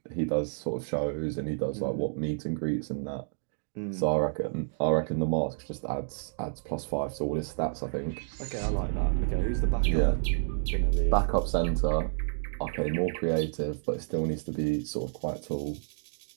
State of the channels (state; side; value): silent; left; digital silence